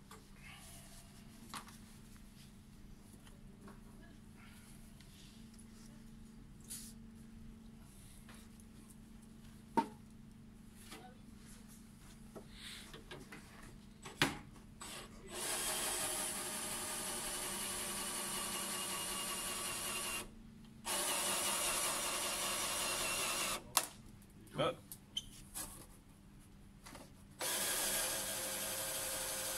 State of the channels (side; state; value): both; identical; correlation 1.00